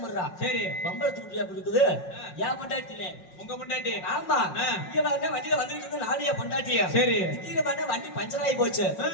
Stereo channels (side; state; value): right; late; 5.5 ms